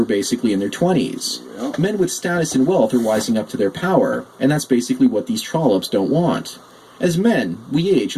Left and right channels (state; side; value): identical; both; correlation 1.00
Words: basically in their 20s. Men with status and wealth are wising up to their power, and that's basically what these trollops don't want. As men, we age